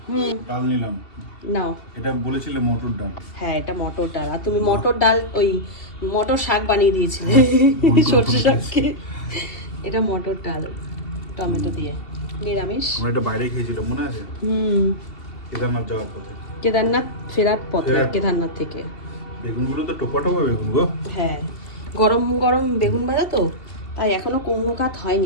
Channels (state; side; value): late; right; 2.7 ms